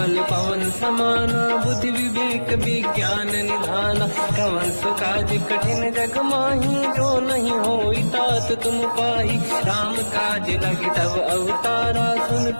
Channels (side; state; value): both; inverted; correlation -1.00